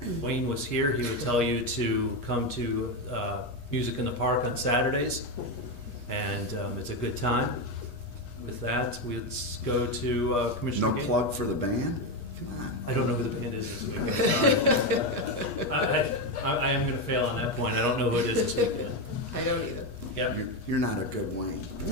Wayne was here, he would tell you to come to Music in the Park on Saturdays, and it's a good time. With that, let's go to Commissioner No Gainier. plug for the band? Come on. I don't know who the band is this weekend. I am gonna fail on that point, I don't know who it is this weekend. I don't either. Yeah, You're not a good Wayne.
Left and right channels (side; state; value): right; late; 8.3 ms